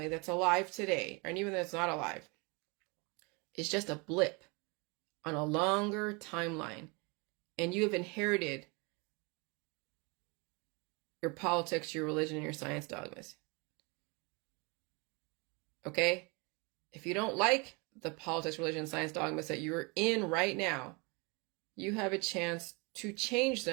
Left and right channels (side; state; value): left; quieter; 29.6 dB